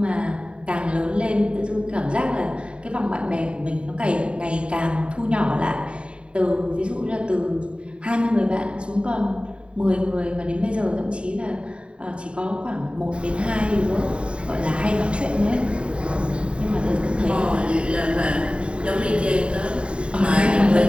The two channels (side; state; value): left; late; 0.055 ms